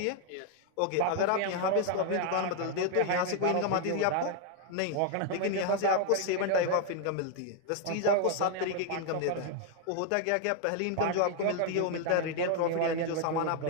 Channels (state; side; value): different; both; correlation 0.00